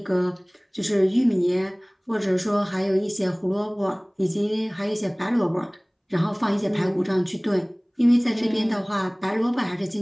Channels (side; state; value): both; identical; correlation 1.00